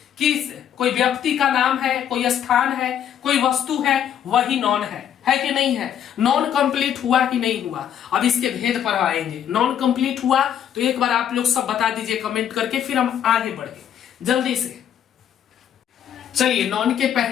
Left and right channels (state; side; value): quieter; right; 9.6 dB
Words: किस? कोई व्यक्ति का नाम है, कोई स्थान है, कोई वस्तु है, वही नॉन है कि नहीं है? नॉन कंप्लीट हुआ कि नहीं हुआ? अब इसके भेद पर आएंगे। नॉन कंप्लीट हुआ तो एक बार आप लोग सब बता दीजिए कमेंट करके, फिर हम आगे बढ़े जल्दी से। चलिए नॉन के